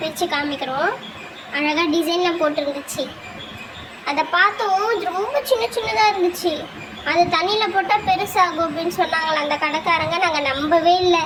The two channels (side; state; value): both; identical; correlation 1.00